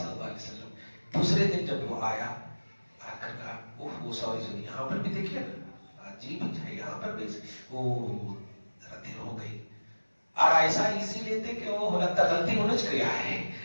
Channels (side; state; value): both; inverted; correlation -1.00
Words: اللہ علیہ وسلم دوسرے دن جب وہ آیا آ کر کہا وہ سوری یہاں پر بھی دیکھیے نا عجیب ہے، یہاں پر بھی وہ ذرا دیر ہو گئی. اور ایسا ایزی لیتے کہ وہ لگتا غلطی انہوں نے کیا ہے